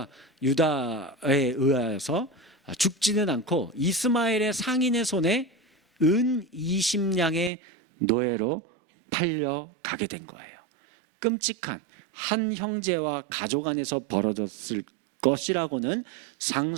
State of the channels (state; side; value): drops out; left; at 7.5 s